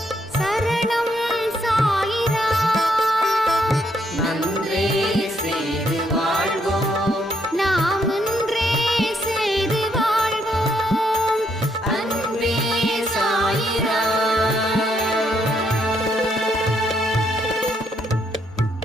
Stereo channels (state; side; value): normal; both; correlation 0.74